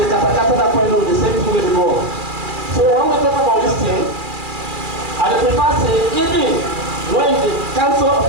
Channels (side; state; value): left; late; 2.4 ms